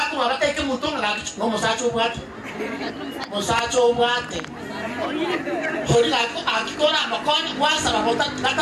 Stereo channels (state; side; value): identical; both; correlation 1.00